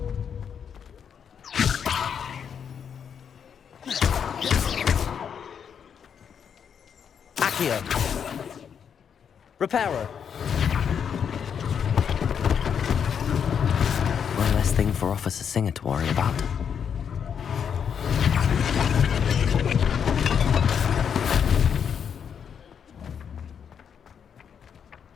Accio. Reparo. One less thing for Officer Singer to worry about.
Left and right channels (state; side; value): quieter; right; 7.5 dB